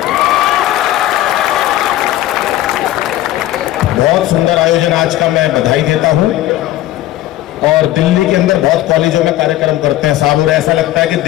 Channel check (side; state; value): right; quieter; 14.6 dB